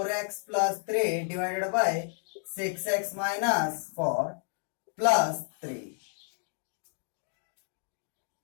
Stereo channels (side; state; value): right; silent; 57 dB below the other